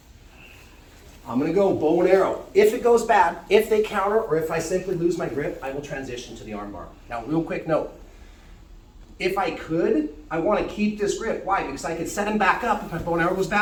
I'm going to go bow and arrow. If it goes bad, if they counter, or if I simply lose my grip, I will transition to the armbar. Now, real quick note. If I could, I want to keep this grip. Why? Because I could set him back up. If my bow and arrow goes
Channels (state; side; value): identical; both; correlation 1.00